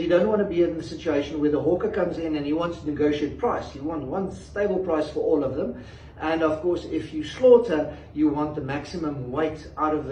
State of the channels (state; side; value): identical; both; correlation 1.00